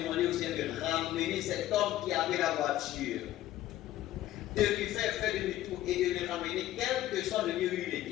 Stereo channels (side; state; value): right; quieter; 13.9 dB